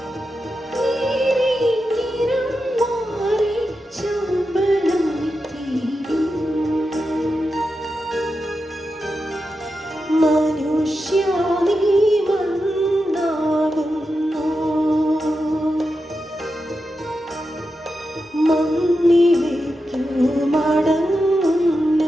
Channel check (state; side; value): normal; both; correlation 0.89